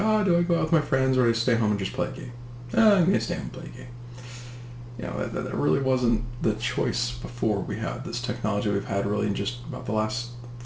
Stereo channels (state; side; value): identical; both; correlation 1.00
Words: do I go out with my friends or do I stay home and just play a game? I'm going to stay home and play a game. That really wasn't the choice before we had this technology we've had really in just about the last